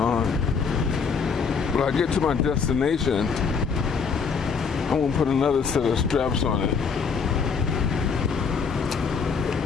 When I get to my destination, I'm gonna put another set of straps on it.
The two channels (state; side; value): quieter; right; 5.7 dB